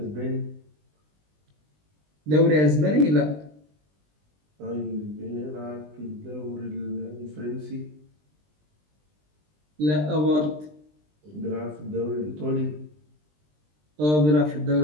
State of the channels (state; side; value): late; left; 20 ms